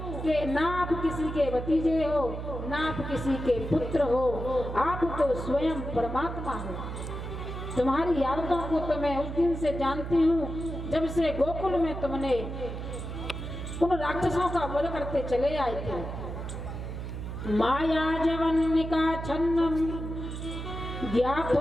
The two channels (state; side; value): noise; right; hum, 6 dB below the sound